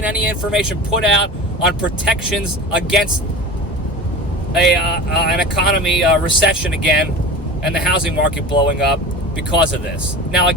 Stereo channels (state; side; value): normal; both; correlation 0.33